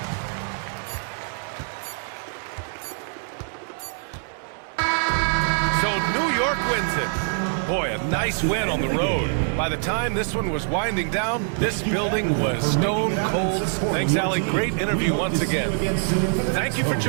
So New York wins it. Boy, a nice win on the road. By the time this one was winding down, this building was stone cold. Thanks, Allie. Great interview once again. Thank you for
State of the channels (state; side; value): silent; left; 57 dB below the other